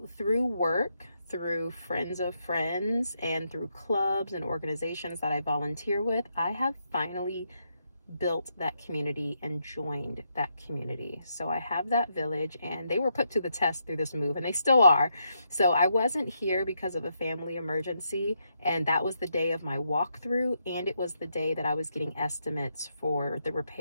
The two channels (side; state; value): both; inverted; correlation -0.79